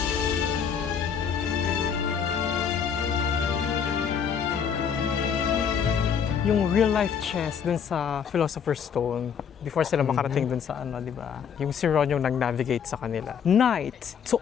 Yung real life chess dun sa Philosopher's Stone before sila makarating dun sa di ba? Yung si Ron yung nag-navigate sa kanila. Knight to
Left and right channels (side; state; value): right; quieter; 7.3 dB